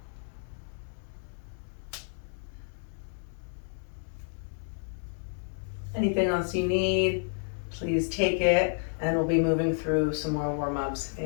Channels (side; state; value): right; silent; digital silence